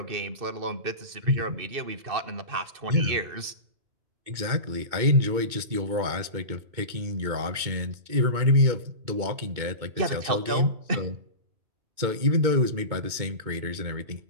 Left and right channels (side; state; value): left; late; 2.2 ms